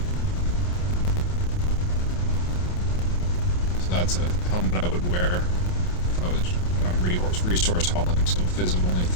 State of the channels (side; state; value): right; late; 28 ms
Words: So that's a helmet I would wear if I was resource hauling. So fizz of only